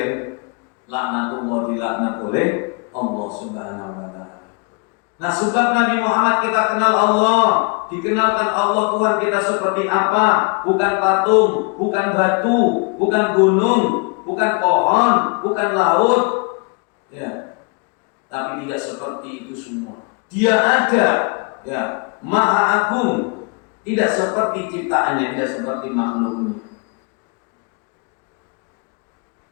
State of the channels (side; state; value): right; quieter; 32.7 dB